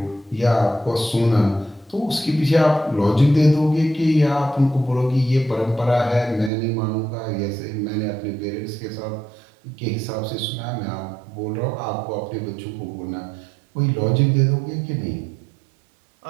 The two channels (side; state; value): left; drops out; at 6.5 s